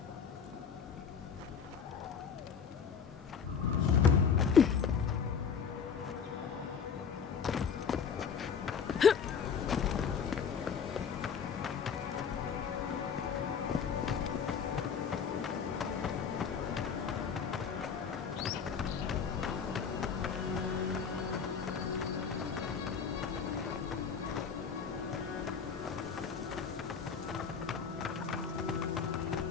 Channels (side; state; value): right; quieter; 6.6 dB